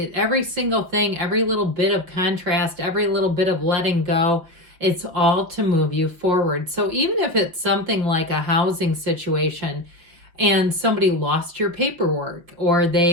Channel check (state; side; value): late; left; 5.8 ms